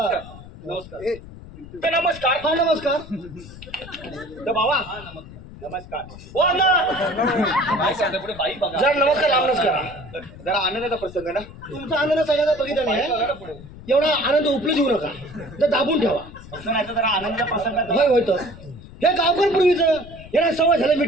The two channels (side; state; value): left; noise; rumble, 17 dB below the sound